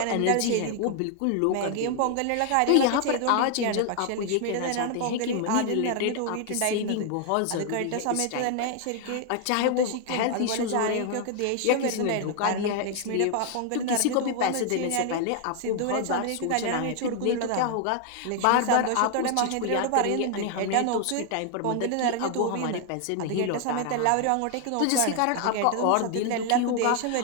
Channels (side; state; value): both; different; correlation 0.00